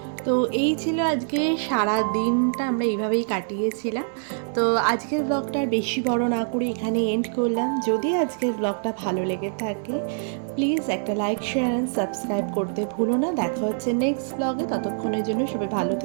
তো এই ছিল আজকে সারা দিনটা আমরা এইভাবেই কাটিয়েছিলাম। তো আজকের ব্লগটা আর বেশি বড় না করে এখানে এন্ড করলাম। যদি আজকের ব্লগটা ভালো লেগে থাকে প্লিজ একটা লাইক, শেয়ার অ্যান্ড সাবস্ক্রাইব করতে ভুলো না। দেখা হচ্ছে নেক্সট ব্লগে। ততক্ষণের জন্য সবাই ভালো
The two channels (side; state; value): left; silent; digital silence